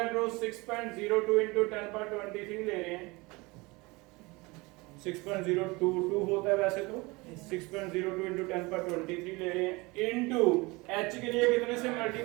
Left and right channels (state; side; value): quieter; left; 24.4 dB